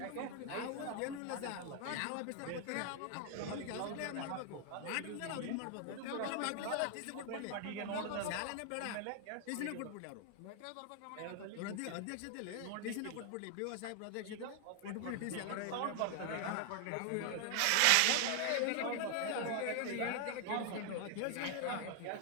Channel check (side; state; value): both; different; correlation 0.00